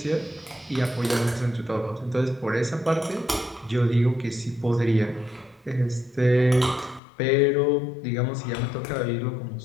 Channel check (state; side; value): drops out; right; at 7.0 s